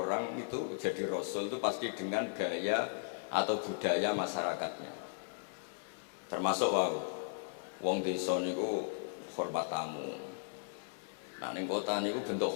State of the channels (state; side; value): silent; right; 53 dB below the other